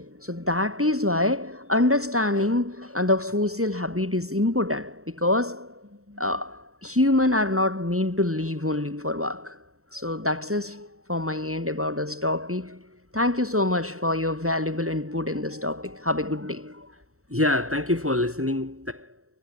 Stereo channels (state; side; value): late; left; 0.64 ms